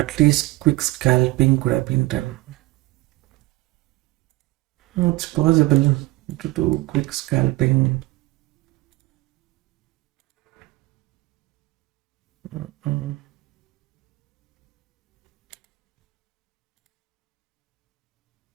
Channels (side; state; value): left; quieter; 20.3 dB